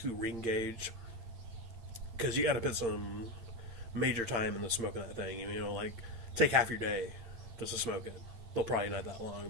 ring gauge. Because you got to put some major time in the smoking that thing. You know, like, take half your day just to smoke it. Well, probably not that long,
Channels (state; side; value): late; left; 8.9 ms